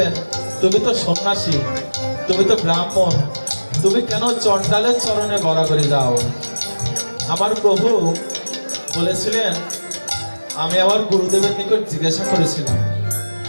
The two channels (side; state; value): both; inverted; correlation -1.00